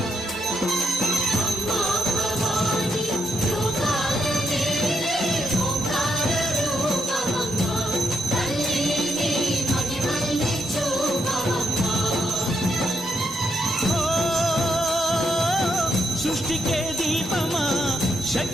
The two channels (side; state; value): both; normal; correlation 0.79